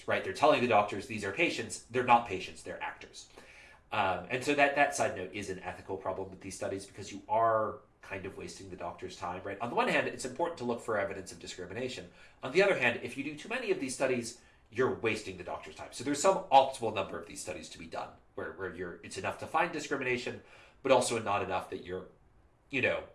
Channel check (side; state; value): both; identical; correlation 1.00